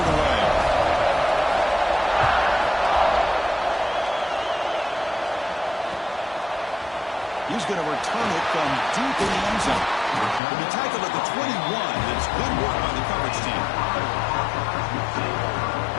away. He's going to return it from deep in the end zone. He'll be tackled at the 21. It's good work by the coverage team.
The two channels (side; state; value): right; drops out; at 10.4 s